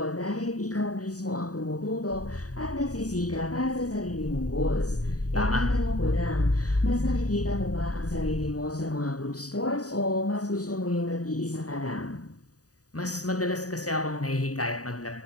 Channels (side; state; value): right; late; 0.67 ms